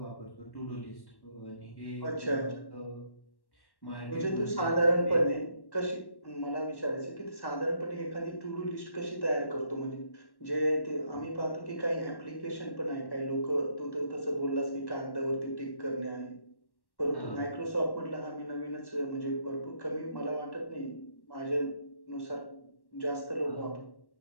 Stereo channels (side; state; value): right; late; 1.1 ms